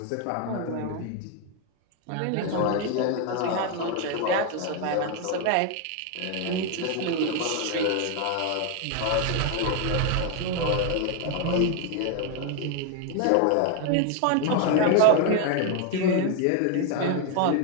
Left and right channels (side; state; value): both; different; correlation 0.01